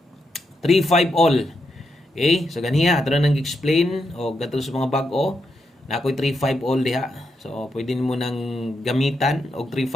3-5 all. Okay? So ganiya ato na nang explain og gato sa mga bag-o. Na ako'y 3-5 all diha. So, pwede mo nang gamitan og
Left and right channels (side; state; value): both; normal; correlation 0.83